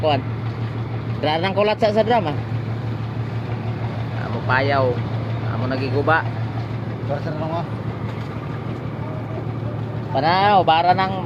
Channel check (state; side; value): identical; both; correlation 1.00